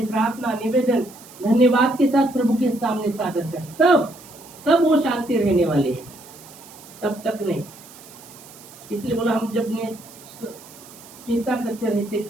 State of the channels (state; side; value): noise; right; hiss, 20 dB below the sound